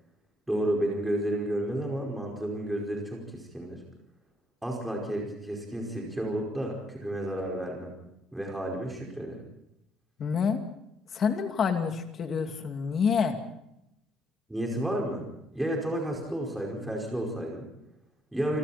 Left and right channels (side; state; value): both; normal; correlation 0.71